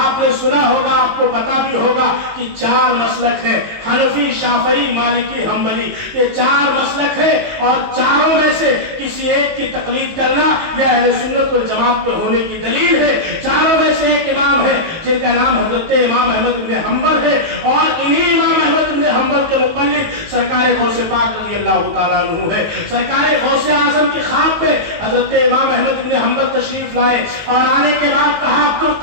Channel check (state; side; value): late; left; 19 ms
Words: सुना होगा, आपको पता भी होगा कि 4 मसलक है, हनफी, शाफई, मालिकी, हम्बली, ये 4 मसलक है اور چاروں میں سے کسی ایک کی تقلید کرنا یہ اہل سنت والجماعت پہ ہونے کی دلیل ہے۔ چاروں میں سے ایک امام ہے جن کا نام حضرت امام احمد بن حنبل ہے، اور انہی امام احمد بن حنبل کے مقلد سرکار غوث پاک رضی اللہ تعالیٰ عنہ ہے۔ سرکار غوث اعظم کی خواب پہ حضرت امام احمد بن حنبل تشریف لائے اور آنے کے بعد کہا